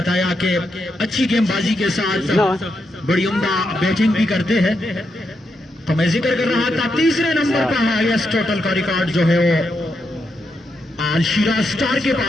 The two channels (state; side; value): normal; both; correlation 0.83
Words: कि अच्छी गेंदबाजी के साथ बड़ी उम्दा बैटिंग भी करते हैं, तो मैं जिक्र कर रहा था तीसरे नंबर पर हाईएस्ट टोटल का रिकॉर्ड जो है वो आल शिराज स्टार के